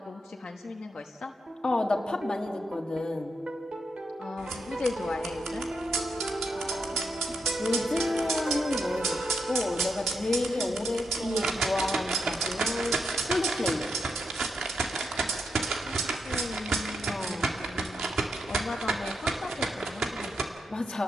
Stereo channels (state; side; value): normal; both; correlation 0.83